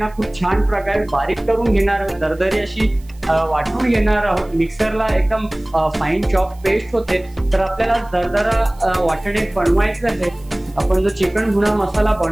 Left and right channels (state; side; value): noise; right; hiss, 28 dB below the sound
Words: खूप छान प्रकारे बारीक करून घेणार, दरदरी अशी वाटून घेणार आहोत। मिक्सरला एकदम फाईन चॉप पेस्ट होते। तर आपल्याला दरदरा वाटणे बनवायचं आहे, आपण जो चिकन भुना मसाला